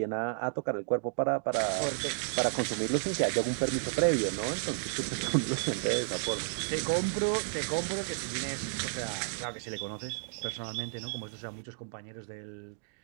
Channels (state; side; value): silent; left; digital silence